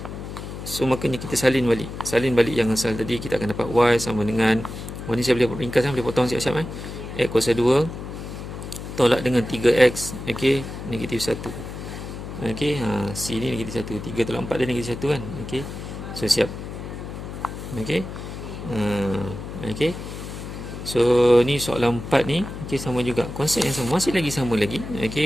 So makanya kita salin balik yang asal tadi. Kita akan dapat Y sama dengan, ni saya boleh ringkas, boleh potong siap-siap X kuasa 2 tolak dengan 3X, okey, negatif 1. Okey, C ni negatif 1. 3 tolak 4 dia negatif 1 kan. Okey, so siap. Okey. Okey. So ni soalan 4 ni, okey, sama juga. Konsep yang sama, masih lagi sama lagi.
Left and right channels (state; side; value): noise; left; hum, 9 dB below the sound